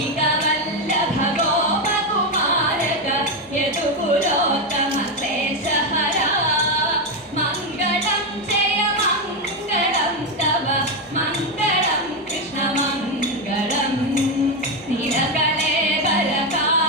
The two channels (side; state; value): both; normal; correlation 0.09